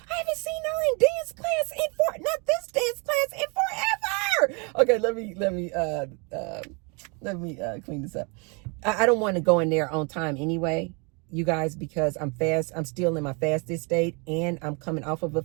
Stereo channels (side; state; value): left; quieter; 32.7 dB